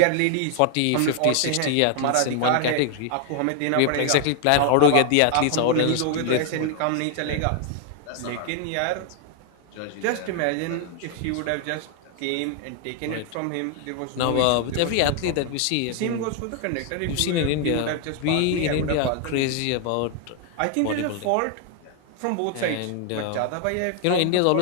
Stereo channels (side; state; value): both; different; correlation 0.00